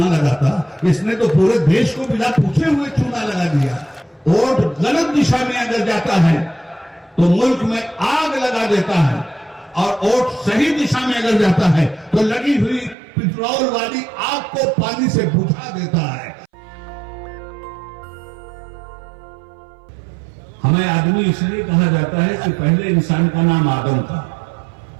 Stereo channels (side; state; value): left; drops out; at 13.0 s